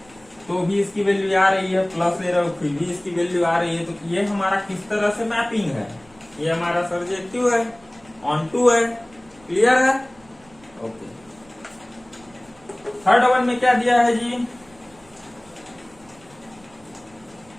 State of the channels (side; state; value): right; noise; rumble, 28 dB below the sound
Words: तो भी इसकी वैल्यू आ रही है, प्लस ले रहे हो फिर भी इसकी वैल्यू आ रही है। तो ये हमारा किस तरह से मैपिंग है, ये हमारा सर्जेक्टिव है, ऑन टू है, क्लियर है। ओके, थर्ड वन में क्या दिया है जी,